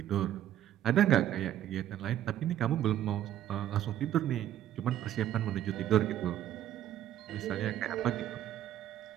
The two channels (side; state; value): left; quieter; 11.8 dB